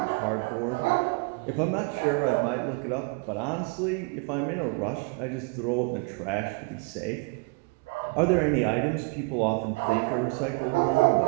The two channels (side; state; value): left; quieter; 29.7 dB